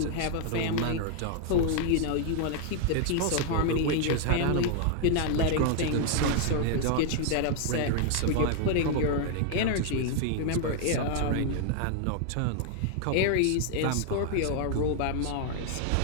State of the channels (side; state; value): both; different; correlation 0.00